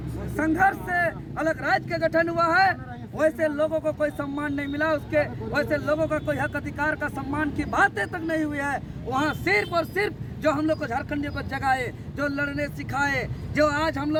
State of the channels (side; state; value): both; identical; correlation 1.00